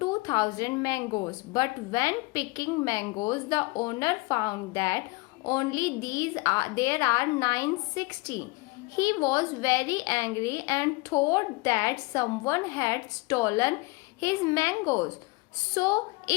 mangoes, but when picking mangoes, the owner found that only there are 960. He was very angry and thought that someone had stolen his mangoes. So,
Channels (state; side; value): quieter; right; 25.1 dB